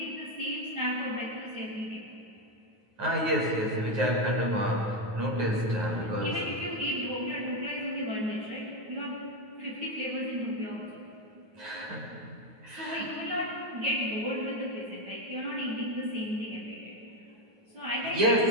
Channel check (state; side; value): late; left; 9.4 ms